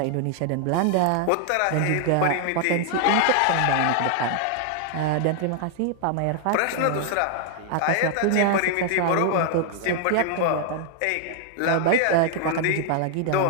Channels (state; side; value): different; both; correlation 0.00